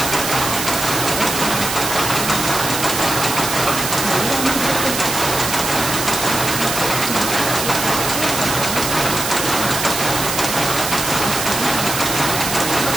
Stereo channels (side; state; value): right; noise; hiss, 3 dB below the sound